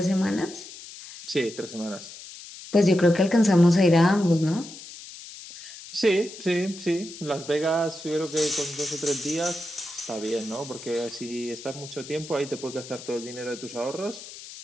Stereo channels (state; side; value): noise; left; hiss, 15 dB below the sound